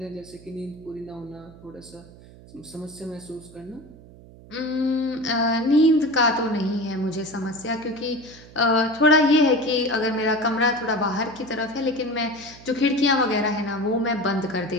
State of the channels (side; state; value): right; noise; hum, 21 dB below the sound